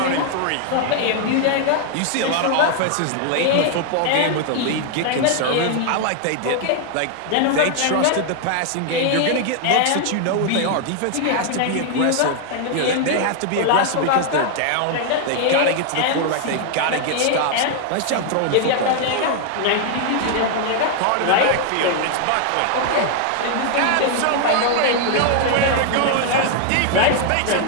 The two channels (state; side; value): different; both; correlation 0.00